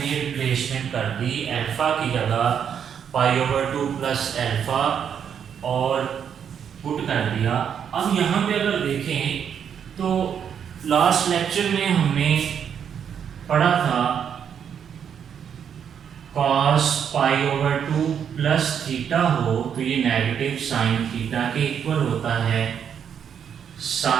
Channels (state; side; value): quieter; left; 8.0 dB